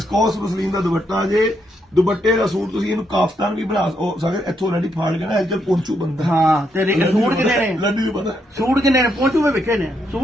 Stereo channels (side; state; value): both; normal; correlation 0.78